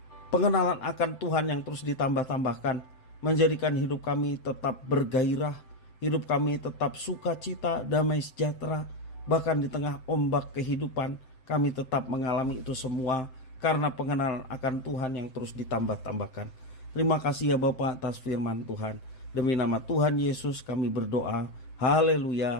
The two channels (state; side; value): late; right; 7.7 ms